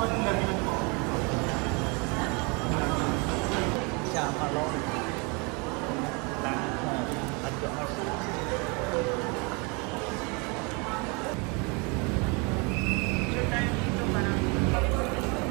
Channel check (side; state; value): left; quieter; 30.8 dB